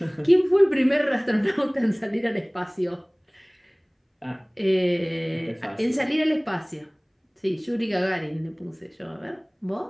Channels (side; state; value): both; identical; correlation 1.00